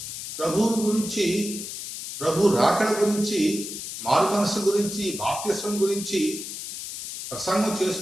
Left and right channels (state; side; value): noise; left; hiss, 8 dB below the sound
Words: ప్రభువు గురించి, ప్రభు రాకడ గురించి, మారు మనసు గురించి, బాప్తిస్వం గురించి ప్రసంగం